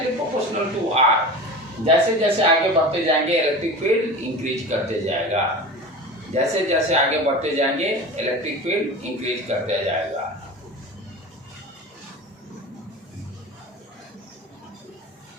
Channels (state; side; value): normal; both; correlation 0.32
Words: प्रोपोर्शनल टू आर। जैसे जैसे आगे बढ़ते जाएंगे इलेक्ट्रिक फील्ड इंक्रीज करते जाएगा, जैसे जैसे आगे बढ़ते जाएंगे इलेक्ट्रिक फील्ड इंक्रीज करते जाएगा।